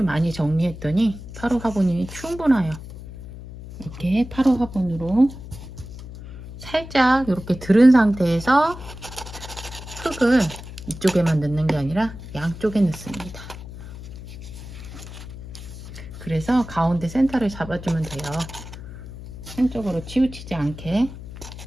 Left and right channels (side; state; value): left; noise; hum, 13 dB below the sound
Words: 많이 정리했더니 8호 화분이 충분해요. 이렇게 8호 화분으로 살짝 이렇게 들은 상태에서 흙을 이쪽에만 넣는 게 아니라 양쪽에 넣습니다. 그래서 가운데 센터를 잡아주면 돼요. 한쪽으로 치우치지 않게.